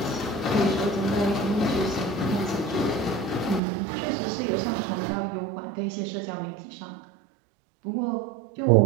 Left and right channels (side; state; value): left; drops out; at 3.6 s